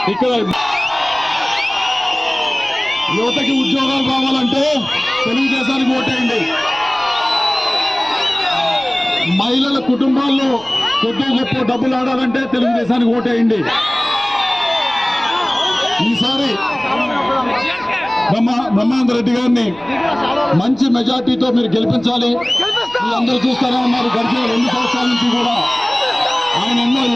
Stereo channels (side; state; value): right; noise; rumble, 25 dB below the sound